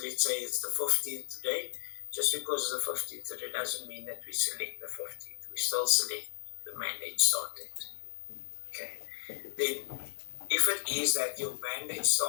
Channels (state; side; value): silent; right; digital silence